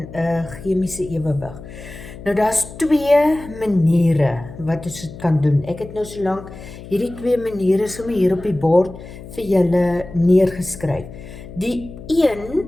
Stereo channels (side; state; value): left; noise; hum, 15 dB below the sound